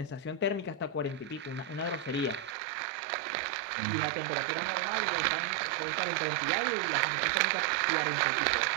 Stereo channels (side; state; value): left; drops out; at 2.6 s